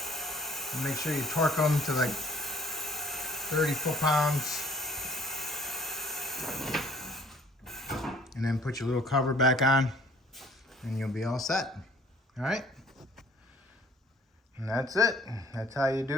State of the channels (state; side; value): normal; both; correlation 0.56